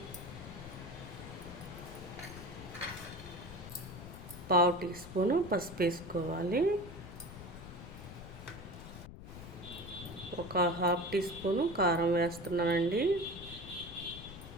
1/2 టీ స్పూను పసుపు వేసుకోవాలి. ఒక 1/2 టీ స్పూను కారం వేస్తున్నానండి.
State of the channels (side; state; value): left; noise; rumble, 13 dB below the sound